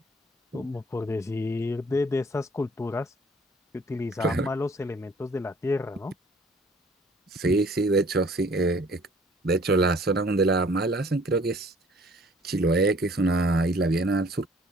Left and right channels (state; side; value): normal; both; correlation 0.56